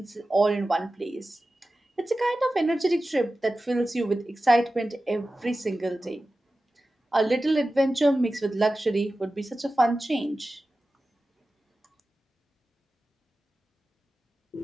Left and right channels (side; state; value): both; normal; correlation 0.94